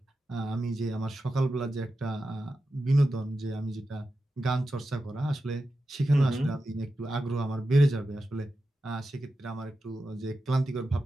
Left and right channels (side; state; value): both; normal; correlation 0.91